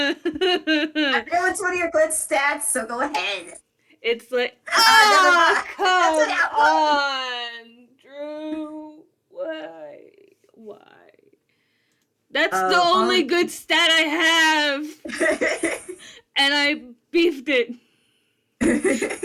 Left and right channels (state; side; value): identical; both; correlation 1.00